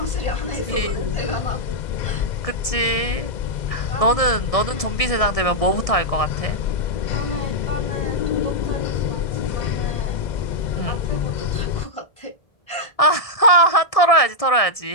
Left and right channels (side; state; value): right; late; 1.7 ms